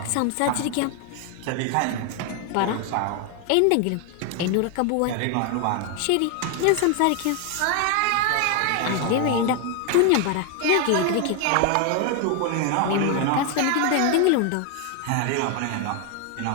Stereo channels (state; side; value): different; both; correlation 0.01